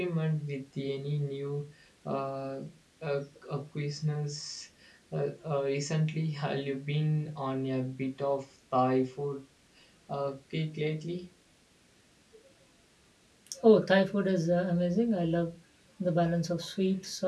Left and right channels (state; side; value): identical; both; correlation 1.00